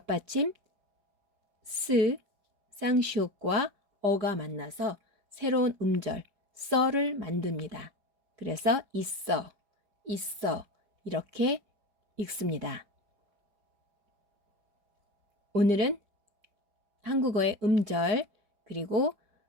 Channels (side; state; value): left; late; 4.9 ms